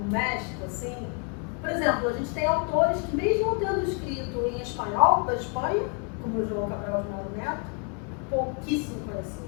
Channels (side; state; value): right; quieter; 37.5 dB